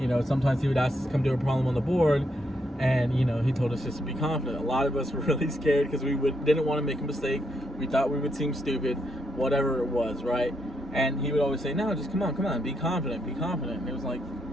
Sometimes he would ask us to come do a problem on the board, and he told us just to be confident. A lot of us were really scared because we didn't want to make a mistake. We thought we would seem stupid, whatever it was, right? And he would always say, no, just come on, be confident, be confident. And it was like,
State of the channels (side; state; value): both; normal; correlation 0.79